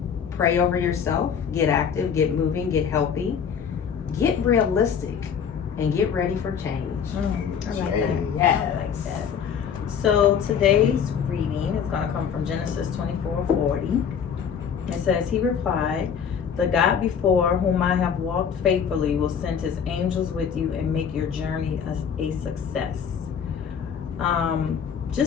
Pray over yourself, get active, get moving, get healthy, get realistic, and get ready for change. I like that. Yes. I like that. So today's reading is going to come from Genesis 24:40. It says, "He replied, 'The God before whom I have walked faithfully will send his angels with you and make your journey a success.'"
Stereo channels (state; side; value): quieter; right; 7.3 dB